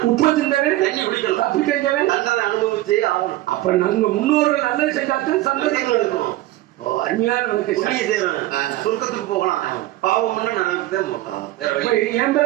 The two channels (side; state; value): left; quieter; 16.4 dB